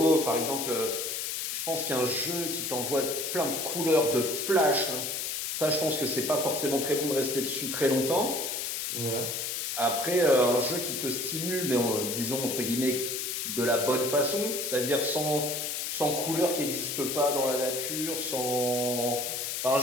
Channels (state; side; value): noise; left; hiss, 3 dB below the sound